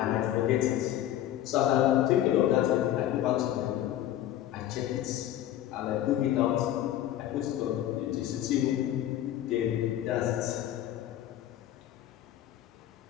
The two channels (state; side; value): quieter; right; 12.4 dB